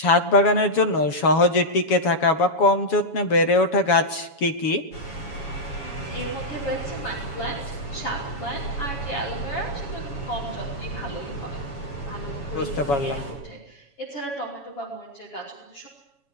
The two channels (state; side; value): late; right; 7.1 ms